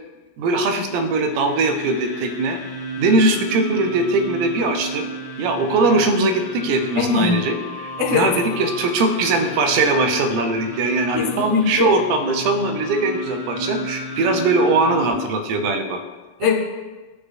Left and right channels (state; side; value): late; left; 17 ms